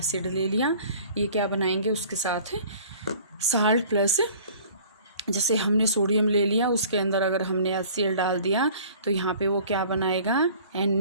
ले लिया, ये क्या बनाएंगे, उसके साथ साल्ट प्लस जैसे हमने सोडियम ले लिया, उसके अंदर अगर हमने HCl डाल दिया तो यहाँ पे वो क्या बनाएगा,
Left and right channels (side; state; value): both; inverted; correlation -0.49